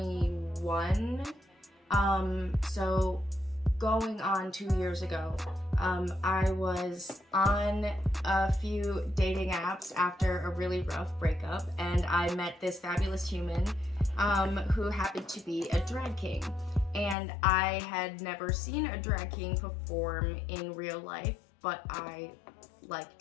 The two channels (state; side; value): drops out; right; at 17.2 s